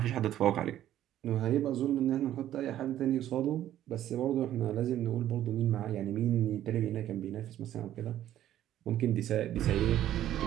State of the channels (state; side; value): quieter; left; 12.2 dB